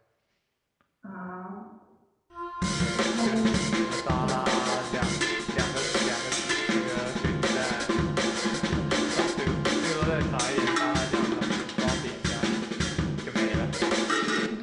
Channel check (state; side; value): identical; both; correlation 1.00